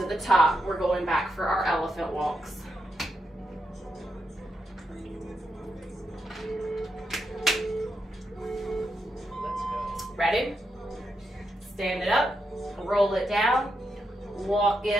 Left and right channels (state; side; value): normal; both; correlation 0.84